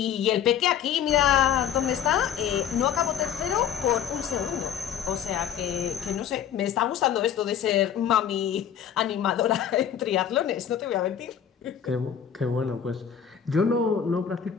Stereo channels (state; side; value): quieter; right; 8.9 dB